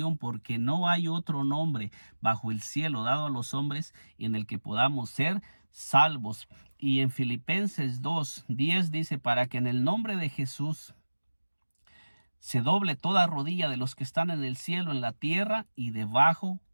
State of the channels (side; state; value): both; inverted; correlation -1.00